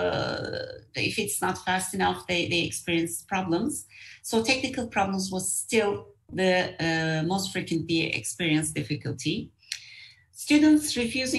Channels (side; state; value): both; identical; correlation 1.00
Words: if it's not fast enough, they experience problems. So technical problems was still the most frequently experienced difficulty. Students